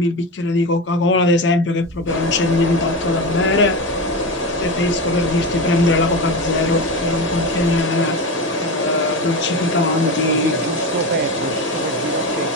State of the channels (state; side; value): normal; both; correlation 0.21